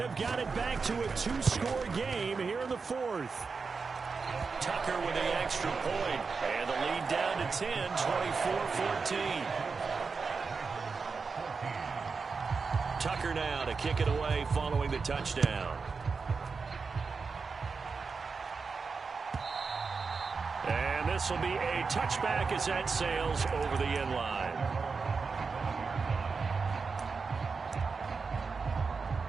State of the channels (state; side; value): quieter; left; 4.8 dB